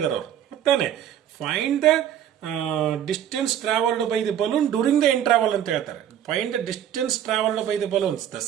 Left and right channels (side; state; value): left; quieter; 10.2 dB